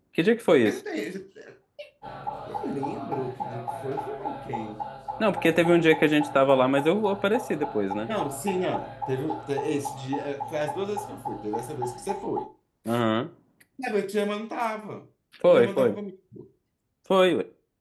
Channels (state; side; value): identical; both; correlation 1.00